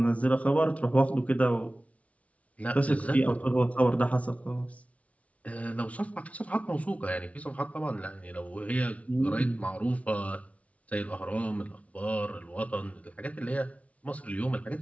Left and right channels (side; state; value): right; late; 0.066 ms